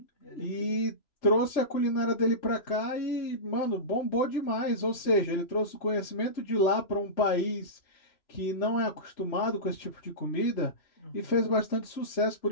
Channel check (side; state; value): right; late; 3.0 ms